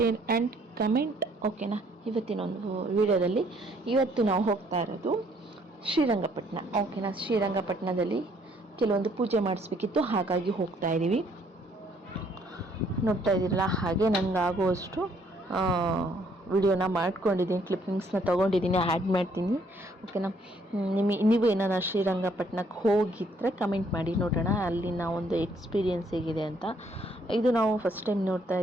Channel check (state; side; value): normal; both; correlation 0.66